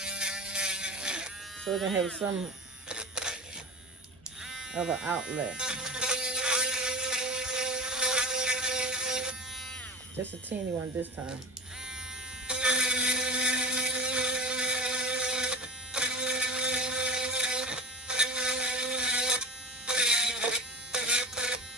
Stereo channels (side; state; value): both; normal; correlation 0.29